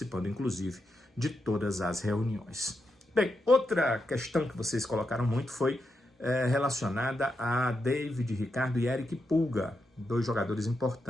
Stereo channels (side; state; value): both; normal; correlation 0.85